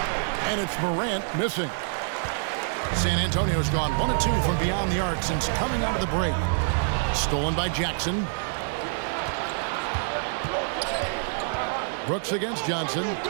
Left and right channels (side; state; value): left; silent; digital silence